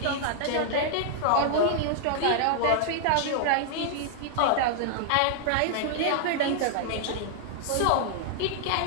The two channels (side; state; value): both; different; correlation -0.01